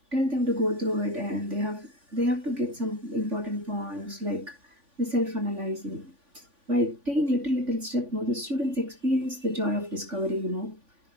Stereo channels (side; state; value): left; late; 3.5 ms